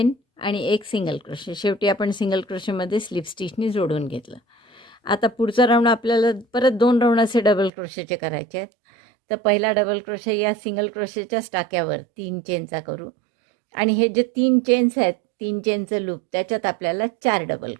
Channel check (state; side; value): drops out; left; at 7.7 s